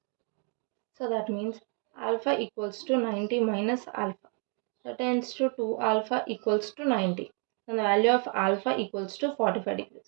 So that means alpha equals to 90 minus alpha. That tends to 2 alpha equals to 90. And the value of alpha equals to 45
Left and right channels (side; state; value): left; quieter; 38.4 dB